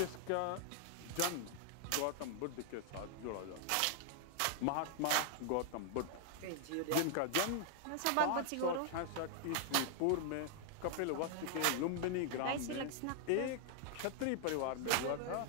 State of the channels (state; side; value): different; both; correlation 0.00